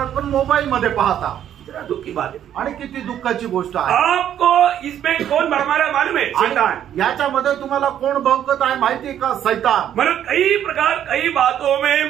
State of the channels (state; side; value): quieter; left; 10.3 dB